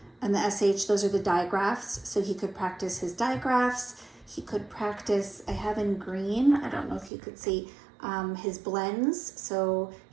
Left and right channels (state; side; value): drops out; left; at 7.1 s